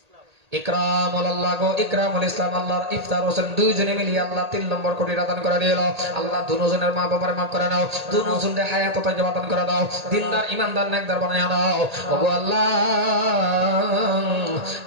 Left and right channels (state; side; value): late; left; 1.8 ms